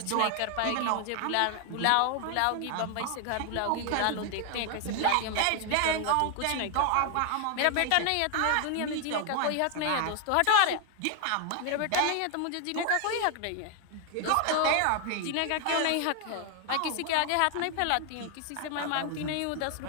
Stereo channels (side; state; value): both; different; correlation 0.00